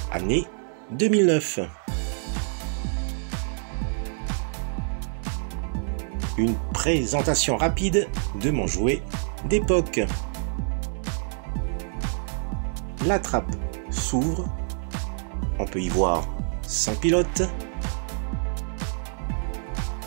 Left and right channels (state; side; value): silent; left; 61 dB below the other